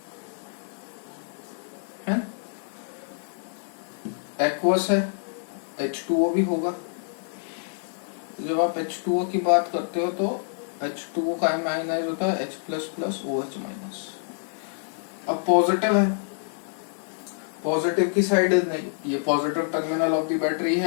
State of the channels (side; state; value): right; silent; digital silence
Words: है. एक्वस है, H2O भी होगा. जब आप H2O की बात करते हो तो H2O का आयनाइज होता है H plus plus OH minus. अब पॉजिटिव है, पॉजिटिव की साइड नहीं, ये positive terminal of the battery